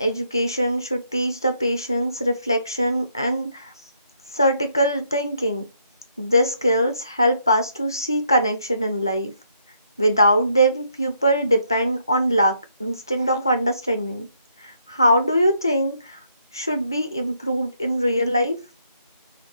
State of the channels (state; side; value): inverted; both; correlation -0.73